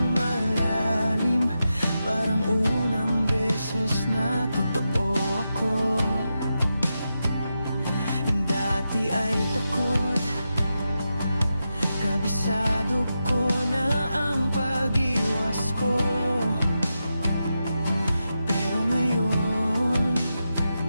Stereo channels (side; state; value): both; inverted; correlation -0.89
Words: malalim, parang unang beses na totoo ako. Dati ay takot, kabisado ko na ang pag-iwas ko. Pero ngayon,